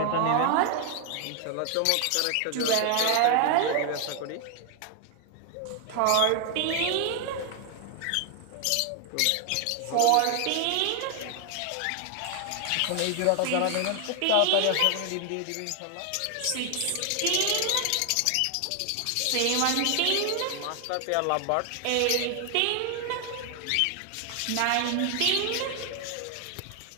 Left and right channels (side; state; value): both; different; correlation 0.00